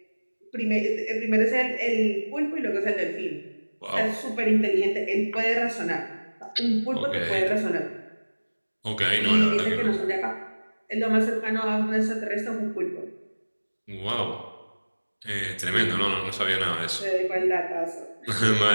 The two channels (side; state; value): both; inverted; correlation -1.00